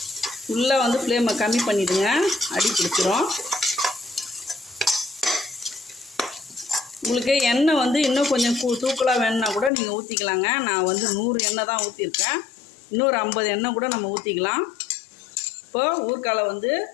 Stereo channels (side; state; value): right; drops out; at 9.7 s